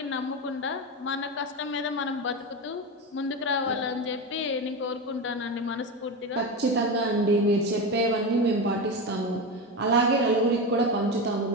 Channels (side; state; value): both; normal; correlation 0.19